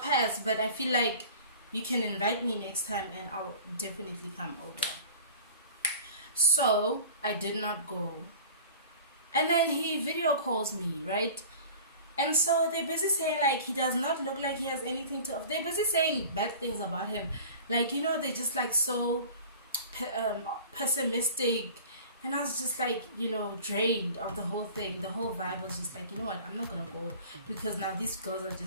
but I feel like you can invite me next time and I'll definitely come over. So, I did not go. And then he video calls me, right? And so they're busy saying like he does not look like he has anything to offer. They're busy saying bad things about him. Like, you know, they're just like so pessimistic. And I was just like, you know, drained of the whole thing. The whole vibe was just like, you know what, I'm not gonna go because now these girls are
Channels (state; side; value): inverted; both; correlation -0.41